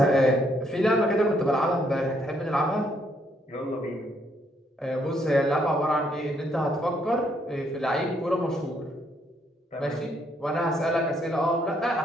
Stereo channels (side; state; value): both; normal; correlation 0.71